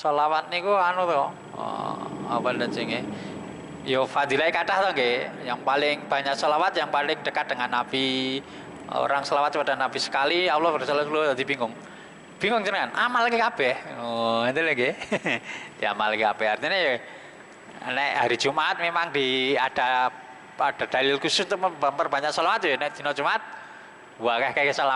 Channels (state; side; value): identical; both; correlation 1.00